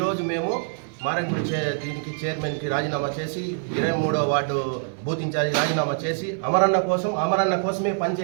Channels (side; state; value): left; silent; 62 dB below the other